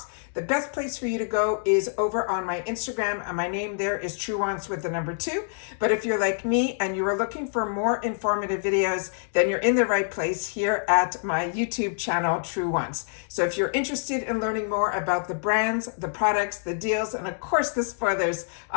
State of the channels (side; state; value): right; silent; digital silence